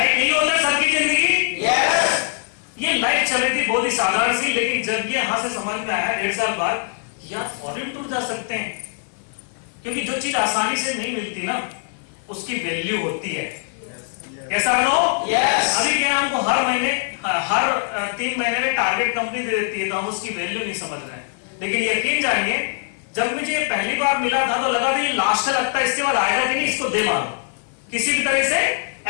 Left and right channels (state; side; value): silent; right; 55 dB below the other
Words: यही होता है सबकी जिंदगी। ये लाइफ चल रही थी बहुत ही साधारण सी, लेकिन जब ये यहां से समझ में आया 1.5 साल बाद, यार फॉरेन टूर जा सकते हैं। क्योंकि जो चीज आसानी से नहीं मिलती ना, उसकी वैल्यू होती है। कैसा नो? अभी क्या हमको हर महीने, हर 3 महीने में टारगेट कंपनी दे देती है, तो हम उसकी वैल्यू नहीं समझ रहे हैं। लेकिन यकीन जानिए, जब मुझे ये पहली बार मिला था तो लगा था ये लास्ट लगता है, इसके बाद आएगा कि नहीं, इसको दे मारो, किसी भी तरह से